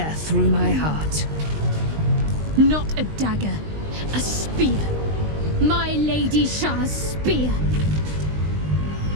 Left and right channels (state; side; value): late; left; 20 ms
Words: through my heart. Not a dagger, a spear. My Lady Shah's spear.